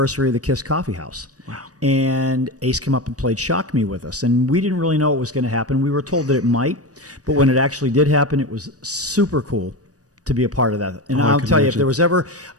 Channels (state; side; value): late; left; 0.67 ms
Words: of the KISS Coffee House. Wow. And Ace came up and played Shock Me with us. And we didn't really know what was going to happen. We were told that it might. But when it actually did happen, it was super cool to be a part of that. And I'll tell you, if there was ever